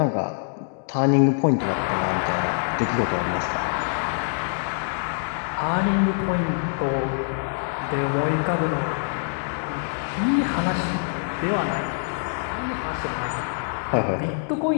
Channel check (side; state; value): right; silent; digital silence